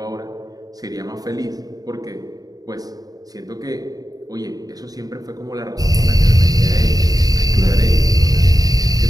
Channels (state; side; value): late; left; 0.18 ms